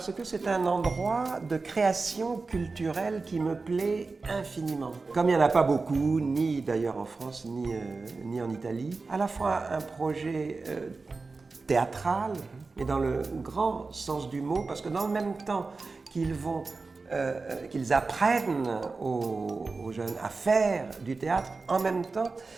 que c'est un endroit de création culturelle qui me plaît infiniment. Comme il n'y en a pas beaucoup, ni d'ailleurs en France, ni en Italie, à la fois un projet théâtral, mais dans le grand sens du mot, parce que dans le même temps qu'ils apprennent aux jeunes à faire du théâtre, en même temps,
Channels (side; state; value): left; quieter; 4.0 dB